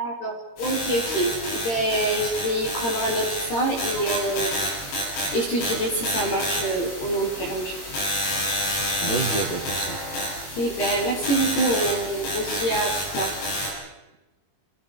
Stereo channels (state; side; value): late; right; 22 ms